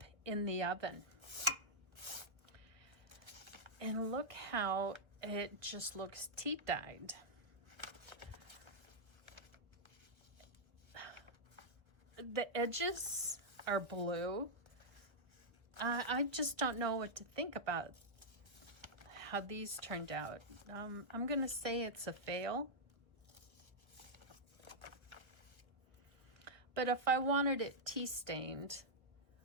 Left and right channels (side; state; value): left; late; 1.3 ms